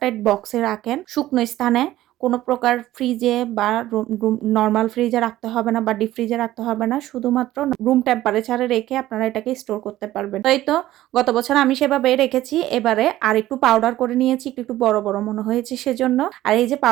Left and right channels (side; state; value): left; quieter; 14.9 dB